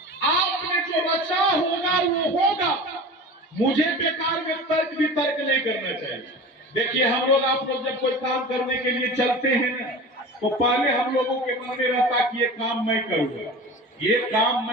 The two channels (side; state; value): both; normal; correlation 0.35